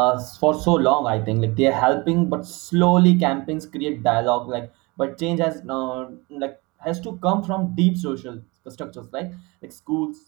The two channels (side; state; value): left; quieter; 25.4 dB